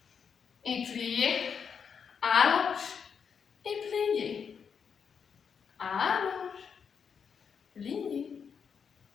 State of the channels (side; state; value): right; quieter; 6.7 dB